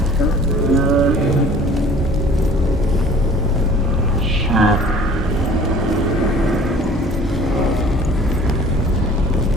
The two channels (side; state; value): both; normal; correlation 0.49